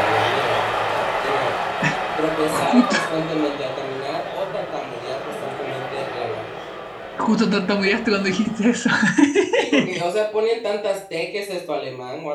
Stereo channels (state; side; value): identical; both; correlation 1.00